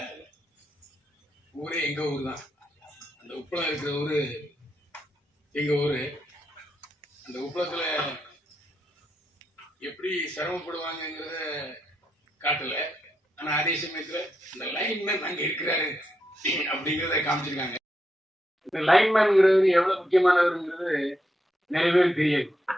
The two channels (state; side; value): normal; both; correlation 0.82